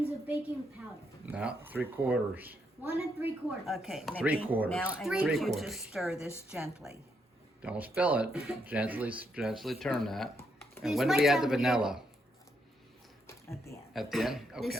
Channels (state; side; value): normal; both; correlation 0.77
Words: of baking powder. Now 3/4. 1 3/4. Okay, Mickey, 3/4. now I Three need you to quarters. stir this gently. Don't spill it. Gently turn that. And These when do might we add the sound weird. vanilla? At the end. At the end? This